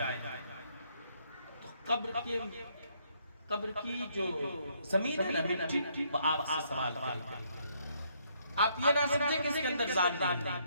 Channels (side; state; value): both; inverted; correlation -0.71